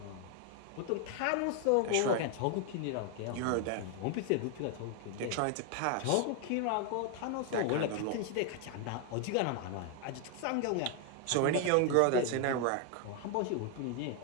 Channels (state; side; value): different; both; correlation 0.01